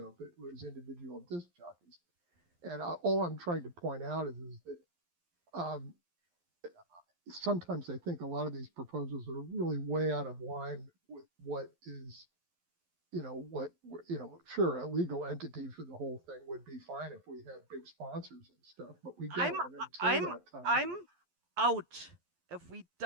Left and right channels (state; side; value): late; left; 11 ms